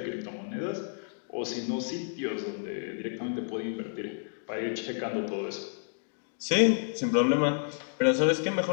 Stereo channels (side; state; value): right; silent; digital silence